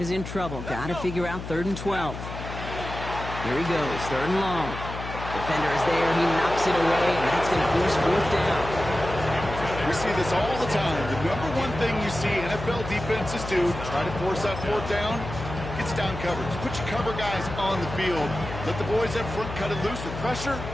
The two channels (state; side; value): noise; left; hum, 9 dB below the sound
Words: in trouble. Got to figure out 3rd and 12. Here he goes, 3rd and long. Defender is there. He knocks it away, and that's going to force 4th down. We see this all the time. The number one thing you see NFL defenses do, try to force that 4th down, gets down coverage. Put your cover guys on the field. Let the boys up front cut it loose with pressure.